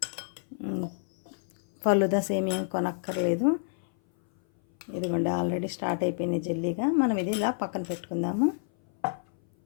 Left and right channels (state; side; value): silent; right; 57 dB below the other